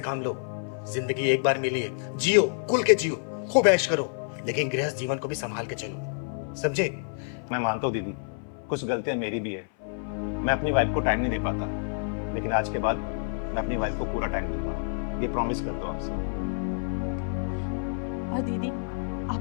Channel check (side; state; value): right; silent; 59 dB below the other